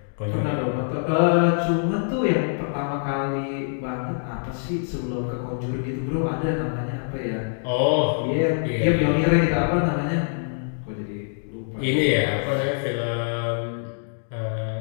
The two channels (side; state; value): right; silent; digital silence